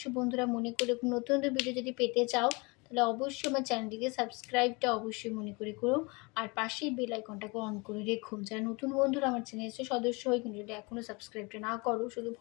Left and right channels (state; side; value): quieter; right; 28.2 dB